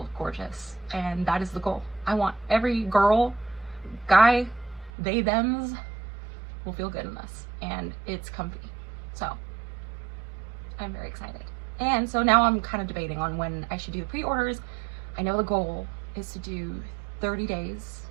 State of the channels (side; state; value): left; drops out; at 4.9 s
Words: gorgeous, and that is the goal. I want every girl, guy, they, thems will feel good in this, and it's comfy. So I'm very excited. And so now I'm kind of debating on when I should do the pre-orders. I know the goal is to do 30 days,